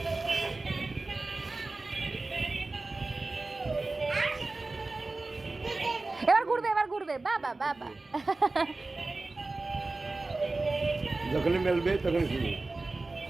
এবার ঘুরবে বাবা বাবা যখনই মেলবে তখন শুনি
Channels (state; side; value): quieter; left; 3.4 dB